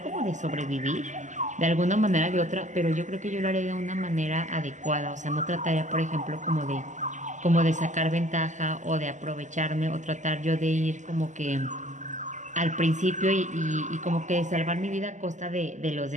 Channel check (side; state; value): left; late; 0.35 ms